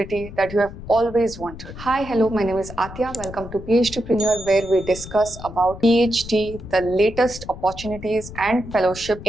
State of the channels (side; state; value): left; noise; rumble, 13 dB below the sound